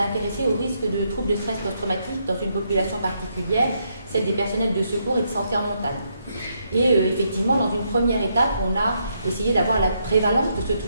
au risque de troubles de stress post-traumatique dans une population particulière, celle des personnels de secours et de santé en montagne. Et effectivement, dans une première étape, on a essayé d'avoir la prévalence de ce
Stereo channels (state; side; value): inverted; both; correlation -0.77